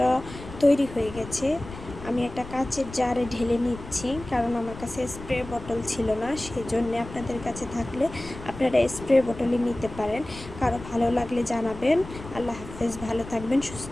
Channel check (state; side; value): noise; left; rumble, 14 dB below the sound